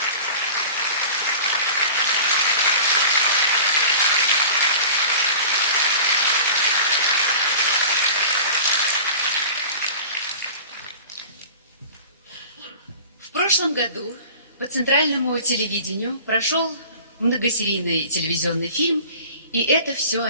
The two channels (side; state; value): both; inverted; correlation -0.41